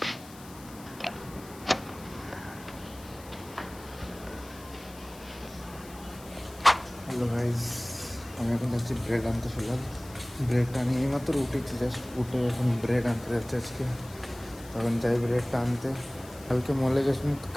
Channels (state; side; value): noise; left; hiss, 20 dB below the sound